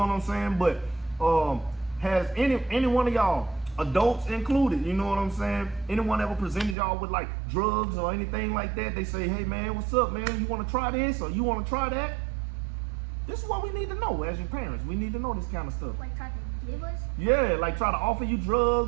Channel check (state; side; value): drops out; left; at 6.8 s